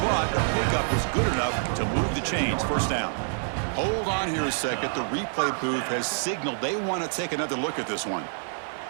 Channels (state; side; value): silent; left; digital silence